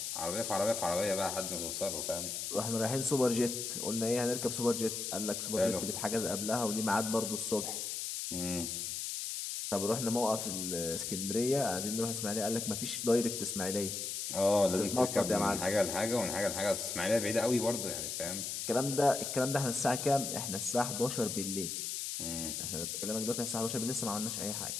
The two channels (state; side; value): noise; left; hiss, 3 dB below the sound